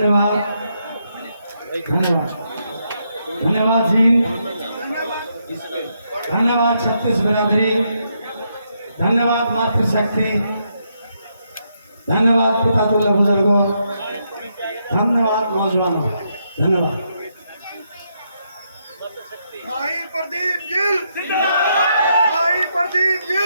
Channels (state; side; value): inverted; both; correlation -0.79